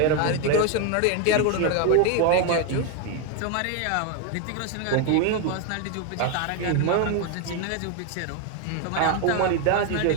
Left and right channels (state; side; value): different; both; correlation 0.01